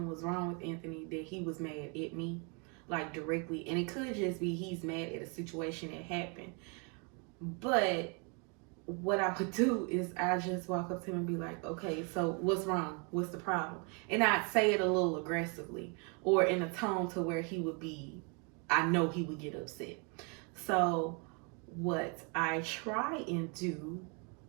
was wrong with Anthony that he was mad at me, like, directly. And it could just be he's mad at a situation that happened. But what I would do is I just walk up to him and be like, okay, so what's wrong? What's the problem? And I'd say it a little aggressively or in a tone to where I know he would get upset. So what I try and do,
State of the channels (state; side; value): quieter; left; 34.9 dB